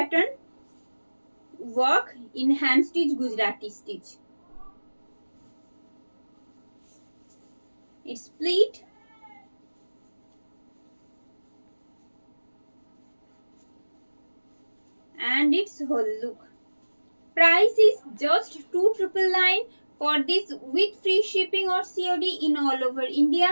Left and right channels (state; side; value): inverted; both; correlation -1.00